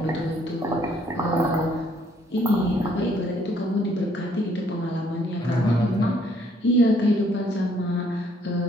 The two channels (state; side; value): normal; both; correlation 0.65